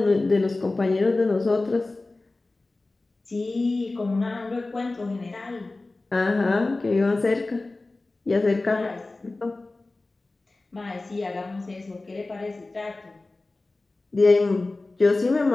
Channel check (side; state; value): right; quieter; 3.2 dB